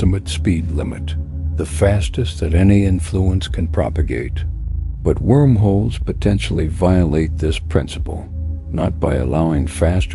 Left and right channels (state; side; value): identical; both; correlation 1.00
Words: speed limit, the fastest that any influence can propagate. But wormholes potentially violate this principle, not by allowing